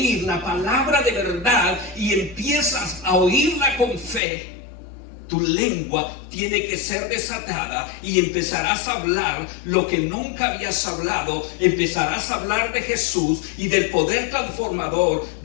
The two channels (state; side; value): drops out; right; at 4.2 s